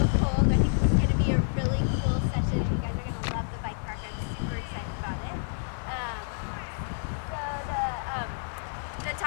cold. I think this is going to be a really cool session, and you guys are going to love the bike park. I'm super excited about it. The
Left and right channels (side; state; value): right; silent; digital silence